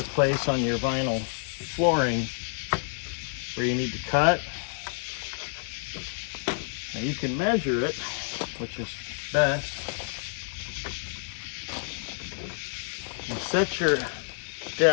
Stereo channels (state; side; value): silent; right; 56 dB below the other